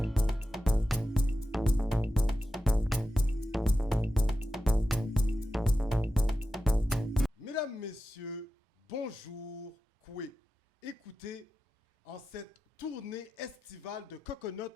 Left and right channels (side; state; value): both; normal; correlation 0.92